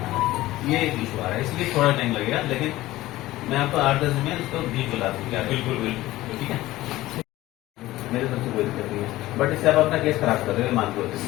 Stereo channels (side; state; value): right; quieter; 16.9 dB